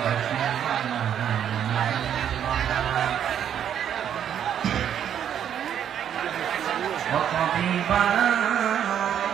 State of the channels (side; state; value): left; quieter; 9.3 dB